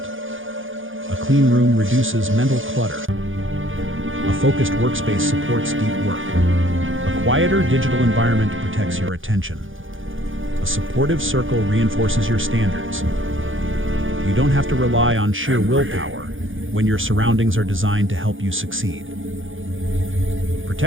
A clean room reduces mental clutter. A focused workspace supports deep work. A quieter digital environment protects your attention. A supportive circle reinforces your standards. You don't have to rely on sheer willpower when your surroundings are designed to help you succeed.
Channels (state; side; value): late; left; 0.58 ms